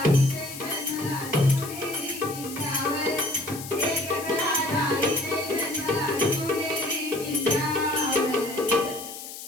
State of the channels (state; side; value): noise; left; hiss, 11 dB below the sound